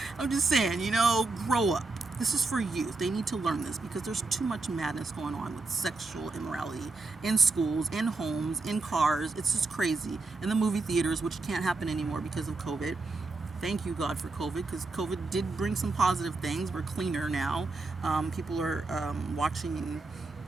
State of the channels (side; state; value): left; quieter; 3.6 dB